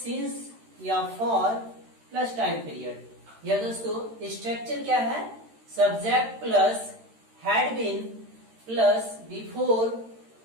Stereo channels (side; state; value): left; late; 13 ms